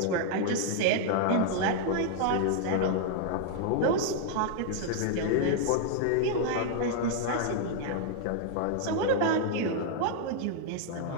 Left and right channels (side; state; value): both; different; correlation -0.01